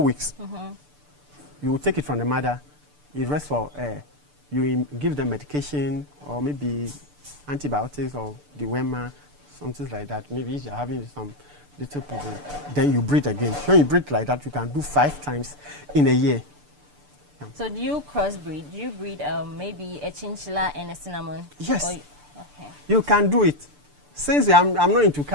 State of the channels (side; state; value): left; late; 6.8 ms